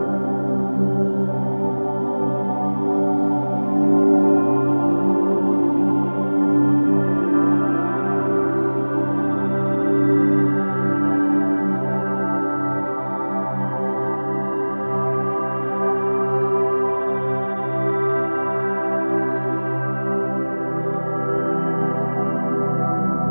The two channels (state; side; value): inverted; both; correlation -1.00